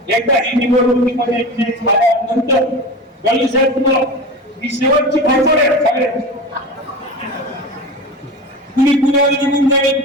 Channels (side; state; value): both; normal; correlation 0.29